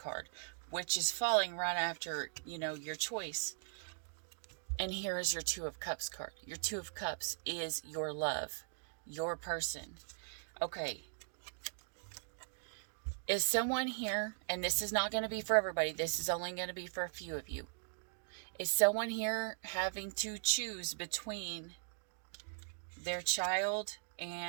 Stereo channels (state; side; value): silent; left; digital silence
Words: which is falling right after, your choice. And here is your 2 of Cups card. Your 2 of Cups is your love, your person. Okay. Is someone here, and this is not going to be for everybody, this is only going to be for a few of you. Is someone here having to choose between their child